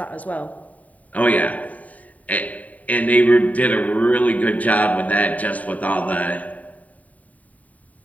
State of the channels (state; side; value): late; right; 0.071 ms